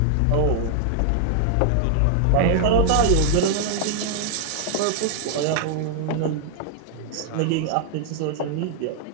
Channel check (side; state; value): both; different; correlation -0.01